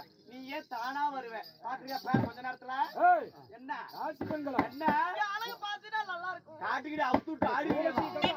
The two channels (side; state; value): both; identical; correlation 1.00